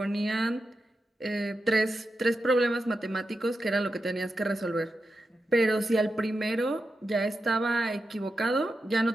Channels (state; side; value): normal; both; correlation 0.89